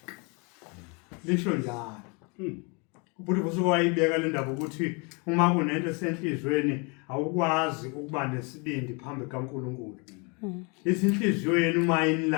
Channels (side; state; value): right; quieter; 32.1 dB